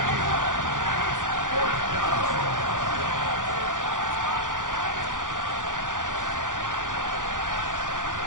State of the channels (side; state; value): left; late; 0.88 ms